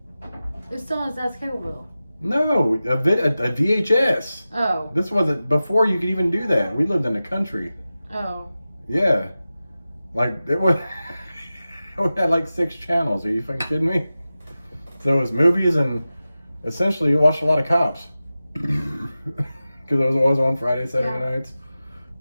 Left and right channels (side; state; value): both; inverted; correlation -0.95